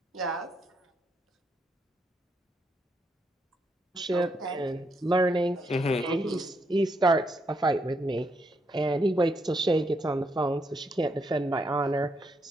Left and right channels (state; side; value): normal; both; correlation 0.77